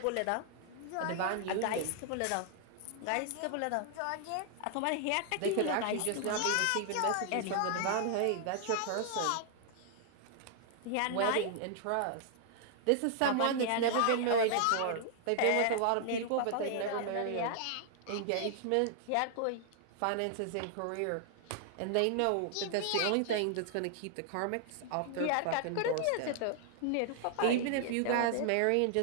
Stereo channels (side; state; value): both; different; correlation 0.00